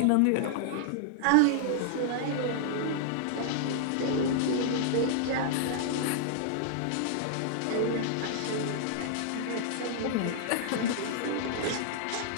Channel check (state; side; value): different; both; correlation -0.01